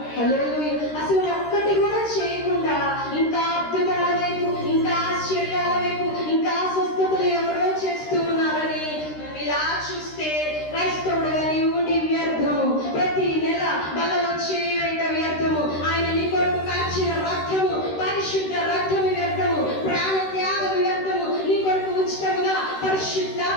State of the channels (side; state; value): right; late; 13 ms